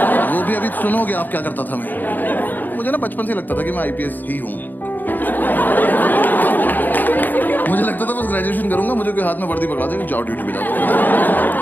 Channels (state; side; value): late; right; 0.087 ms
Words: वो भी अभी सुनोगे आप क्या करता था मैं। मुझे ना बचपन से लगता था कि मैं आईपीएस ही हूँ। मुझे लगता था बस ग्रेजुएशन करूंगा, मुझे कोई हाथ में वर्दी पकड़ा देगा, जाओ ड्यूटी पे जाओ।